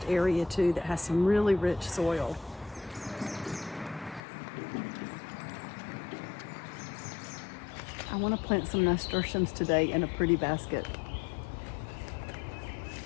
area too that has some really rich soil. I want to plant some nasturtiums today in a pretty basket.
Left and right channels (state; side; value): drops out; right; at 4.2 s